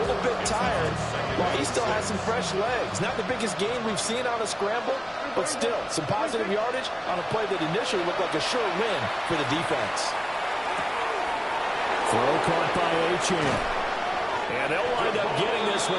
bit tired, while he still has some fresh legs. Not the biggest gain we've seen on a scramble, but still some positive yardage on a play that initially looked like a sure win for the defense. Throw caught by Achane. And they'll wind up getting this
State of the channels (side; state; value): both; identical; correlation 1.00